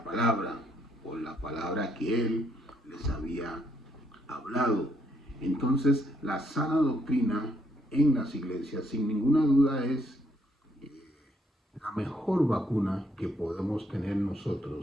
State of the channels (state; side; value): normal; both; correlation 0.72